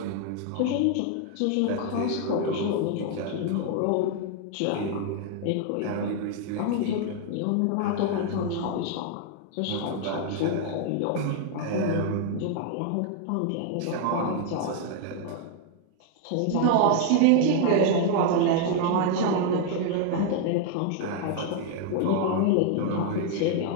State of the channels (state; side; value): different; both; correlation 0.00